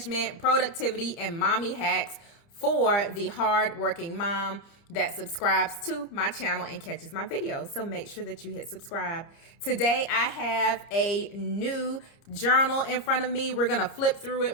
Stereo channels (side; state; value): right; late; 30 ms